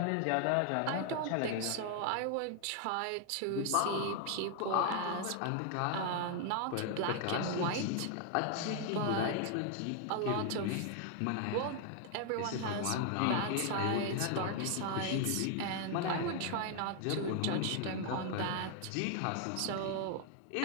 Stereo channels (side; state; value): both; different; correlation 0.00